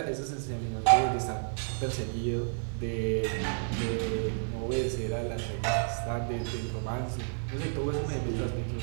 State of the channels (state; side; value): silent; left; digital silence